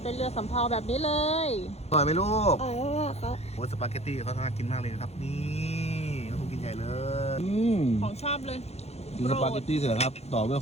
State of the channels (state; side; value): late; right; 0.31 ms